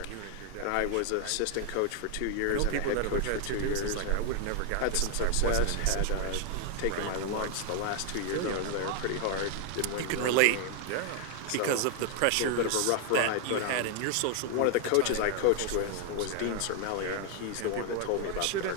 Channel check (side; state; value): both; different; correlation 0.00